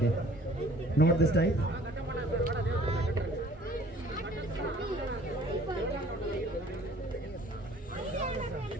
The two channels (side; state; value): both; normal; correlation 0.54